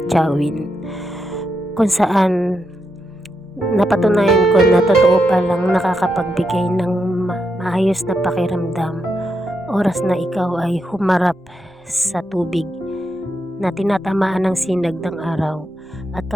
kung saan napatunayan ko na totoo palang nakakapagbigay ng maayos na pakiramdam oras na ikaw ay humarap sa tubig na tinatamaan ng sinag ng araw. At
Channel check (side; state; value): both; normal; correlation 0.84